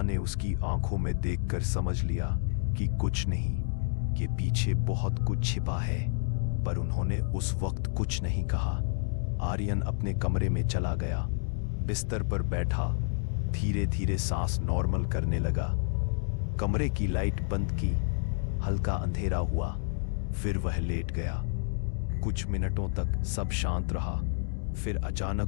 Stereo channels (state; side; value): silent; right; digital silence